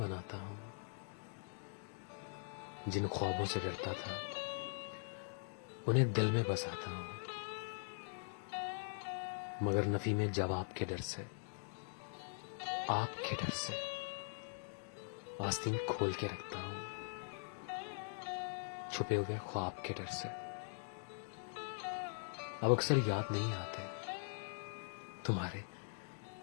हूं। जिन ख्वाबों से डरता था उन्हें दिल में बसाता हूं, मगर नफी में जवाब के डर से, आपके डर से आस्तीन खोल के रखता हूं, छुपे हुए ख्वाब के डर से। अब अक्सर याद नहीं आते तुम्हारे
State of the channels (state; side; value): silent; right; digital silence